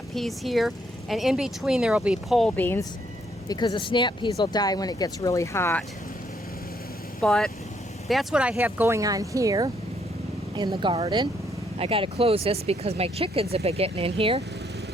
peas here, and in between there will be pole beans because the snap peas will die when it gets really hot. But that's what I have going on here in the garden. I got to close this because my chickens have been getting in here,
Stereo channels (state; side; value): normal; both; correlation 0.71